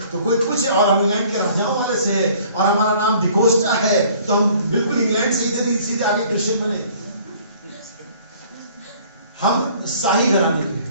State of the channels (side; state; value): both; inverted; correlation -0.55